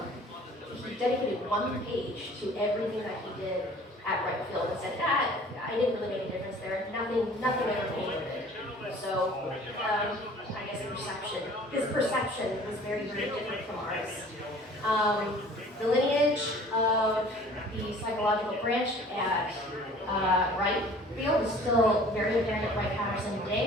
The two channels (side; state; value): both; normal; correlation 0.49